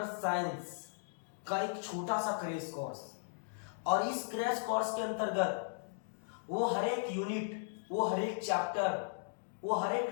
साइंस का एक छोटा सा क्रैश कोर्स। और इस क्रैश कोर्स के अंतर्गत वो हर एक यूनिट, वो हर एक चैप्टर, वो हर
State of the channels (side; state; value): right; silent; digital silence